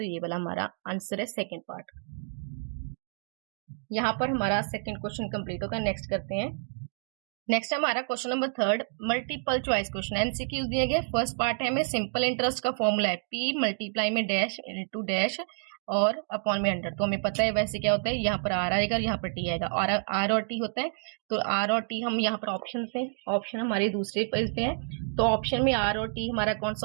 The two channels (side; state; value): left; silent; digital silence